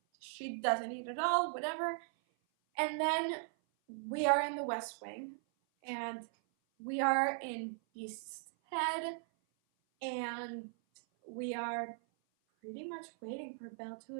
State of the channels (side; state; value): left; silent; 52 dB below the other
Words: she doesn't eat at all, whatever. And then we are in the West Wing, and we are in Beast's head, and we are pretty much waiting for Belle to